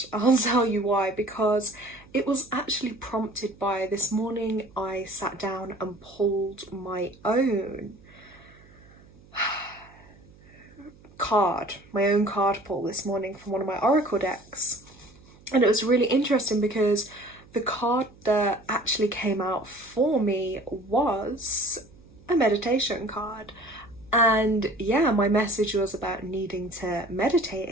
tell you why, because it was actually prompted by this morning I sat down and pulled my own card pull this morning from one of my oracle decks, and it was really interesting because the card that actually came out for me was a meditation card. And yeah, my message was about needing to meditate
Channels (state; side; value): noise; right; hum, 25 dB below the sound